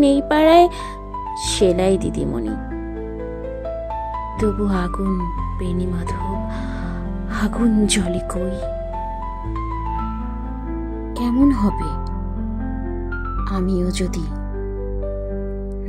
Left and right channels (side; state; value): both; identical; correlation 1.00